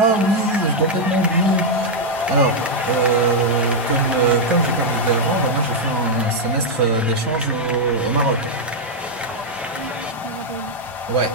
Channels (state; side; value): normal; both; correlation -0.01